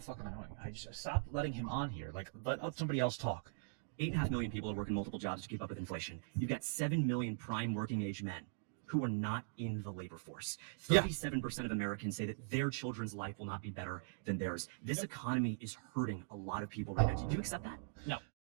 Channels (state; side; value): silent; left; digital silence